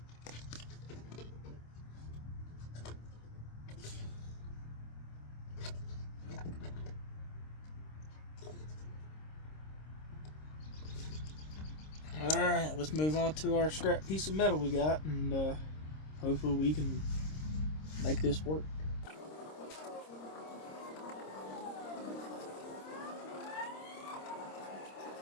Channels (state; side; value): late; right; 26 ms